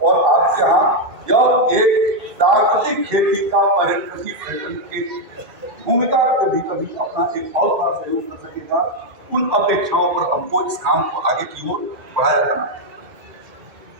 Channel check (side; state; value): left; late; 2.2 ms